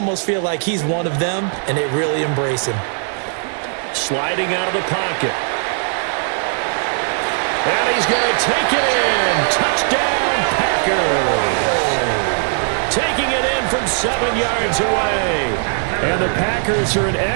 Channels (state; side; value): silent; left; 57 dB below the other